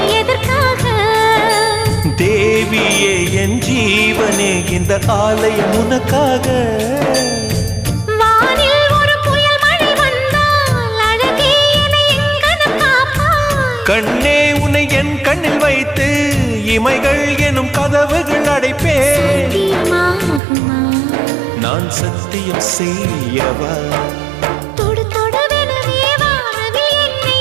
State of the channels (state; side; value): drops out; left; at 20.4 s